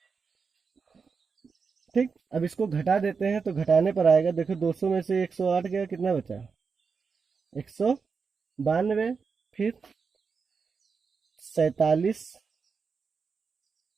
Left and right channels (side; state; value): left; quieter; 5.3 dB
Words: ठीक, अब इसको घटा देते हैं तो घटाने पर आएगा, देखो 200 में से 108 गया, कितना बचा 192। फिर 47